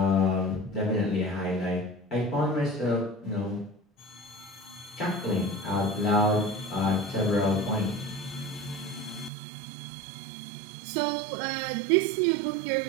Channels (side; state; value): left; drops out; at 9.3 s